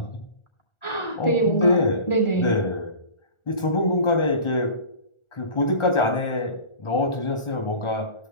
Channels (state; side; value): late; right; 1.4 ms